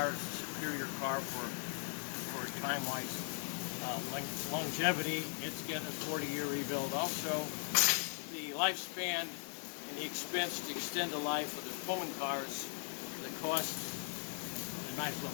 is a superior car for time-wise longevity. It's getting a 40-year rebuild. Also, the lifespan and the expense to extend the life of the Pullman cars, the cost, they might as well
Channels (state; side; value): silent; right; 52 dB below the other